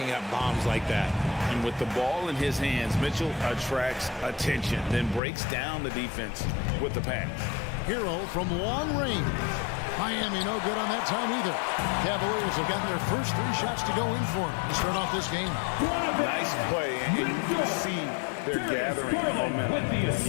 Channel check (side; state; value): right; drops out; at 5.2 s